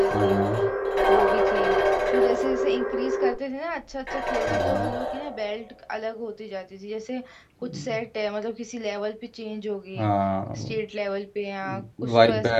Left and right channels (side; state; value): both; identical; correlation 1.00